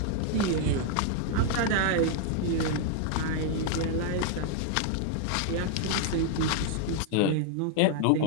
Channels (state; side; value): different; both; correlation 0.00